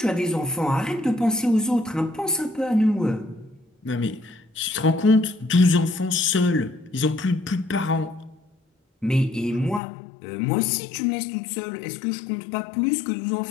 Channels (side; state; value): right; drops out; at 9.8 s